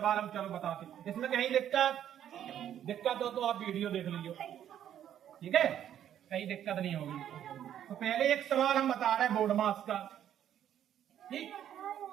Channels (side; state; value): left; quieter; 10.4 dB